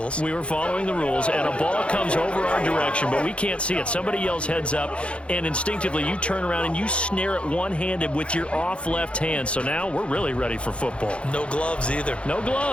We were following the rules, and a ball comes over our direction, but we can't see it. Somebody yells heads up, and instinctively you turn around and you snare it one-handed with your off left hand. So now we're really ready for football. No gloves either. No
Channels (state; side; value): late; right; 0.059 ms